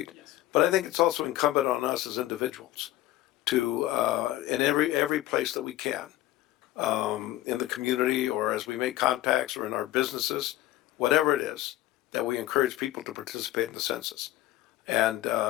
Yes. But I think it's also incumbent on us as individuals to, in every place that we can, in the community or as we make contacts or in our businesses, whatever it is, that we encourage people to participate in the census. And,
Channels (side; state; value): right; quieter; 15.3 dB